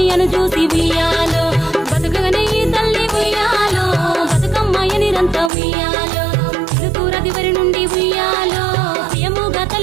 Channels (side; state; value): left; drops out; at 5.5 s